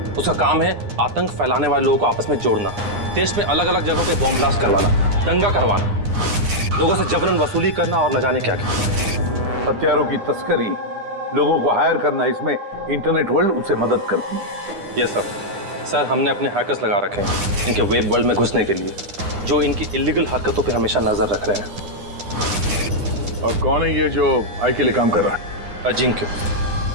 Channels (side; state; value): left; late; 9.8 ms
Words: उसका काम है आतंक फैलाने वाले लोगों को आपस में जोड़ना, देश में अलग अलग जगहों पे बॉम्ब ब्लास्ट करवाना, दंगा करवाना, लोगों से जबरन वसूली करना और न जाने क्या क्या। हथियारों की तस्करी, लोगों को हायर करना, इसमें इंटरनेट वर्ल्ड उसे मदद करती है। Yes sir. सर हमने अपने हैकर्स लगा रखे हैं इनके वेब वर्ल्ड में घुसने के लिए, जो इनकी इलीगल हरकतों पे हमेशा नजर रख रहे हैं। और कौन है ये जो आई के लिए काम कर रहा है?